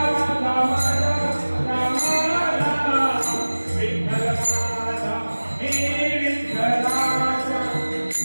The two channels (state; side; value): inverted; both; correlation -1.00